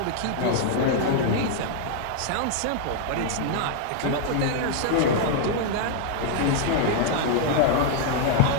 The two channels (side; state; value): both; different; correlation 0.00